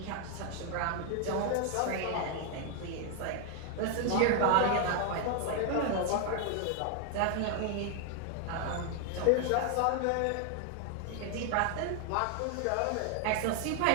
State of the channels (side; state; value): both; different; correlation 0.00